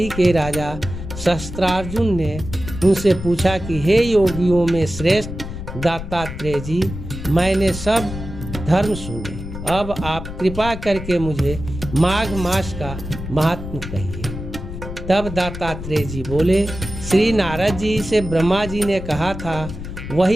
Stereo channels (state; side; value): noise; left; rumble, 9 dB below the sound